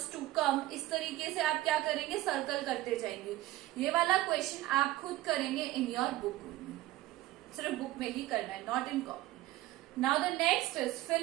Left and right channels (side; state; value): left; quieter; 16.3 dB